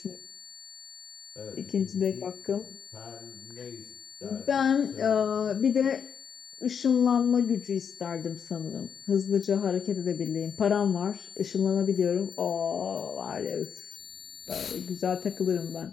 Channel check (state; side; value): quieter; right; 7.3 dB